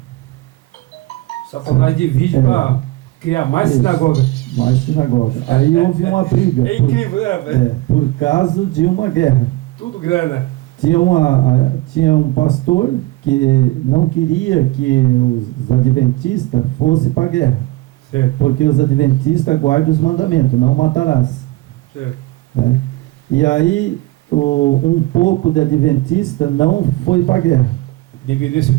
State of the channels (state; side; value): quieter; left; 18.4 dB